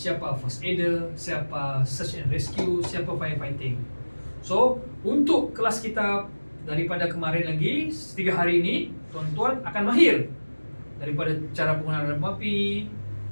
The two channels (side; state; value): both; inverted; correlation -1.00